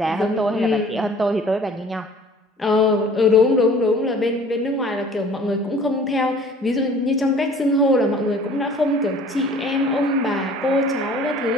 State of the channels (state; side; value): normal; both; correlation 0.50